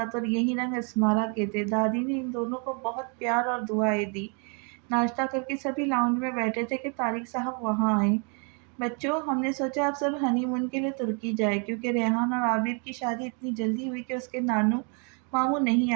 تھا، اور یہی رنگ اسمارا کے تھے۔ دادی نے ان دونوں کو بہت پیار اور دعائیں دی۔ ناشتہ کر کے سبھی لاؤنج میں بیٹھے تھے کہ طارق صاحب وہاں آئے۔ بچوں، ہم نے سوچا اب سب ہنی مون کے لیے ترکی جائے، کیونکہ ریحان اور عابر کی شادی اتنی جلدی ہوئی کہ اس کے نانو ماموں نہیں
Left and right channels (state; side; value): quieter; left; 37.5 dB